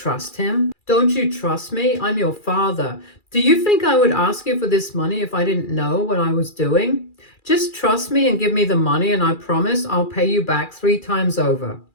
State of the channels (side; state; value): right; late; 2.4 ms